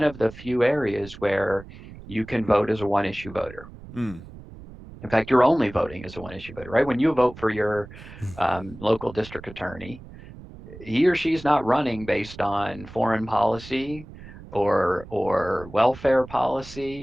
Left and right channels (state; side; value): noise; right; rumble, 16 dB below the sound